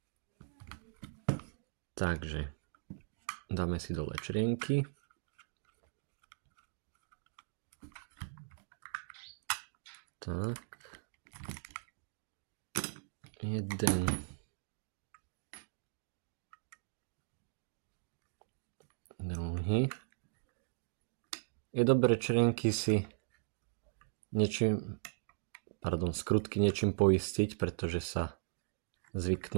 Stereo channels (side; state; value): left; silent; digital silence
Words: Takže dáme si dole črienky. Tak. Jeden. Druhý. Je dobré črienky si skrutky niečím poistiť, pretože sa